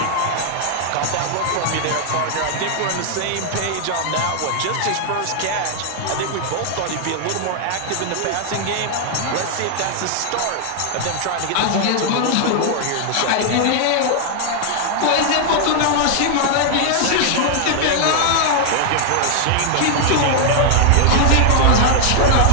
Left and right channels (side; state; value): both; different; correlation 0.00